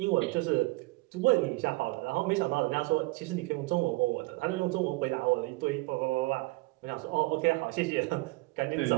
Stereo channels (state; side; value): quieter; left; 22.8 dB